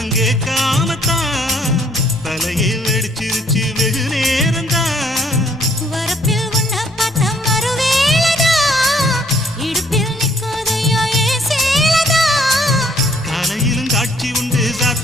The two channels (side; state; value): both; normal; correlation 0.64